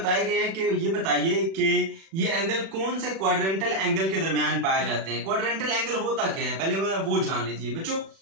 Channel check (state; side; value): late; left; 36 ms